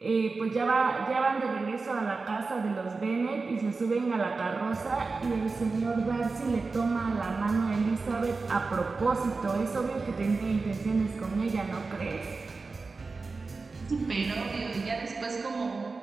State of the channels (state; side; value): quieter; left; 4.1 dB